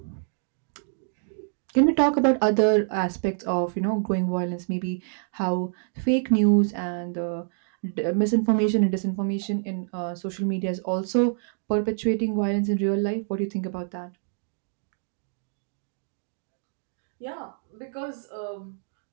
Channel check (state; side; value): silent; left; digital silence